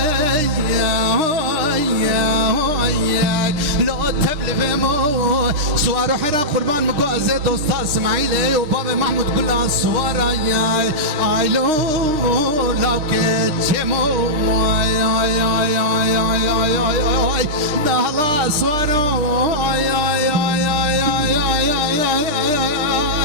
لو تبلي مو سوار حيرا قربان مقوازي دوستا اسماعيلي وبابا محمود كلها سوارا اي لو لو كتشمو دهلا سوارو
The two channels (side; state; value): left; late; 6.5 ms